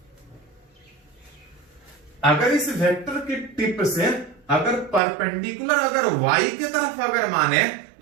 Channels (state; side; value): drops out; left; at 5.0 s